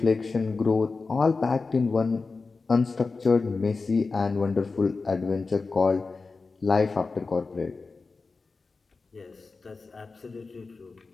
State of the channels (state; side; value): quieter; right; 4.1 dB